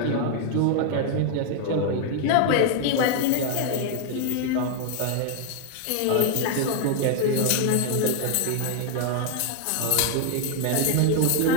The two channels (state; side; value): different; both; correlation 0.00